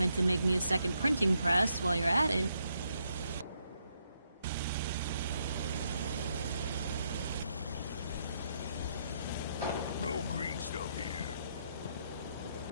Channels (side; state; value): both; inverted; correlation -0.77